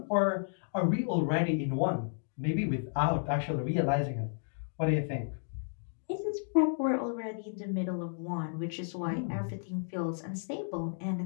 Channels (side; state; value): right; silent; digital silence